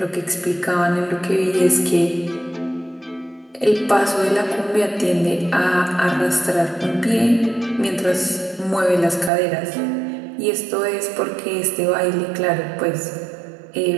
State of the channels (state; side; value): drops out; left; at 9.3 s